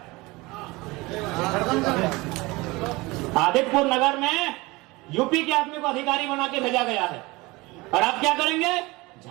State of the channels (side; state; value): left; quieter; 22.6 dB